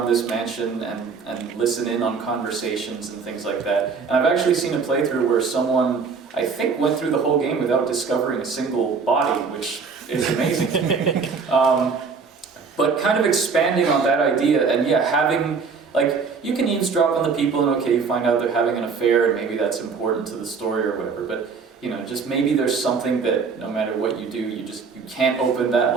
this mansion and listen in on conversations and things like that. And I've actually seen a playthrough where someone, I think, went through the whole game without discovering a single body, which is amazing. But kind of expanding on that idea, and yeah, having, like, you can eavesdrop on the people and okay, you find out they're having an affair and maybe that's important to the story or whatever, but you know, just maybe there's something that no matter what you do, you can't open that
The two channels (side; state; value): left; quieter; 5.3 dB